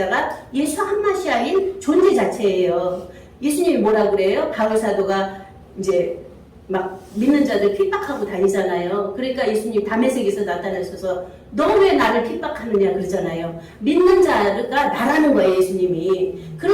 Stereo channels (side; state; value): both; identical; correlation 1.00